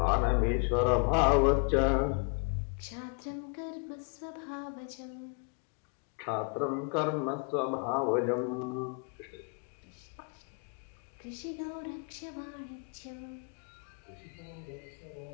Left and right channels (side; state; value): right; quieter; 35.2 dB